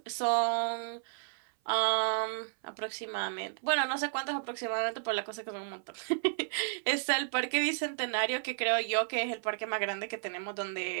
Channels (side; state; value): left; silent; 56 dB below the other